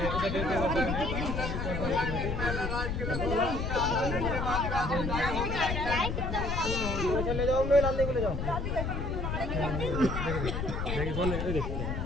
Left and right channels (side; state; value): left; noise; rumble, 2 dB below the sound